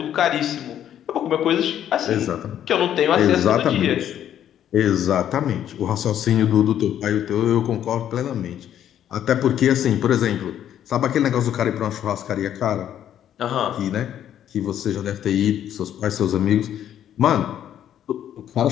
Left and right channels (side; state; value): right; quieter; 10.5 dB